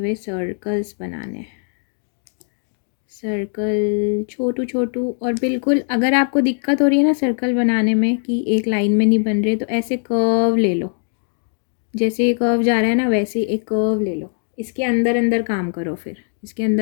सर्कल्स बनाने हैं। सर्कल छोटू छोटू, और बिल्कुल अगर आपको दिक्कत हो रही है ना सर्कल बनाने में कि एक लाइन में नहीं बन रहे, तो ऐसे कर्व ले लो। जैसे ये कर्व जा रहा है ना, वैसे एक कर्व ले लो। इसके अंदर अंदर काम करो, फिर इसके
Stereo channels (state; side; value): silent; right; 58 dB below the other